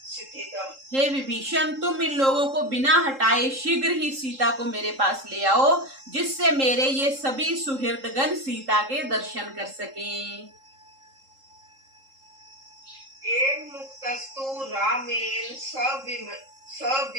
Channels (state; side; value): late; left; 3.7 ms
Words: हे विभीषण, तुम इन लोगों को बिना हटाए शीघ्र ही सीता को मेरे पास ले आओ, जिससे मेरे ये सभी सुहृदगण सीता के दर्शन कर सकें। एवं मुक्तस्तु रामेण